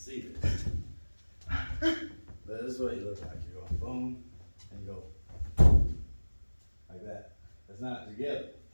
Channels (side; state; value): both; inverted; correlation -1.00